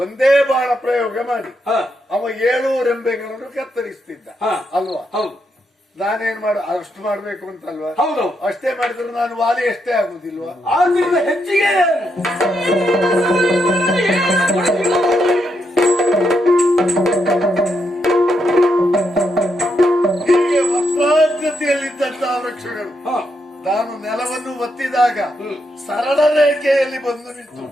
ಬಾಣ ಪ್ರಯೋಗ ಮಾಡಿ ಅವ 7 ರೆಂಬೆಗಳನ್ನು ಕತ್ತರಿಸ್ತಿದ್ದ ಅಲ್ವಾ? ಹೌದು. ನಾನೇನ್ ಅಷ್ಟು ಮಾಡ್ಬೇಕು ಅಂತಲ್ವಾ? ಹೌದು. ಅಷ್ಟೇ ಮಾಡಿದ್ರೆ ನಾನು ವಾಲಿ ಎಷ್ಟೇ ಆಗುದಿಲ್ವಾ? ಆದ್ರಿಂದ ಹೆಚ್ಚಿಗೆ ಹೀಗೆ ವಕ್ರಾಕೃತಿಯಲ್ಲಿದ್ದಂತಹ ವೃಕ್ಷಗಳು ನಾನು ನೆಲವನ್ನು ಒತ್ತಿದಾಗ ಸರಳ ರೇಖೆಯಲ್ಲಿ ಬಂದು ನಿಂತು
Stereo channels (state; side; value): normal; both; correlation 0.80